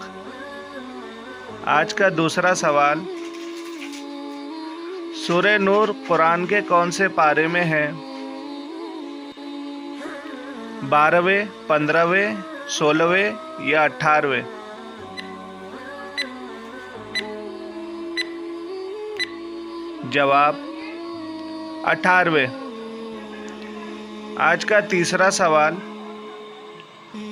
آج کا دوسرا سوال، سورہ نور قرآن کے کون سے پارے میں ہے؟ 12ویں، 15ویں، 16ویں یا 18ویں؟ جواب: 18ویں۔ آج کا تیسرا سوال،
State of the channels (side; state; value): both; identical; correlation 1.00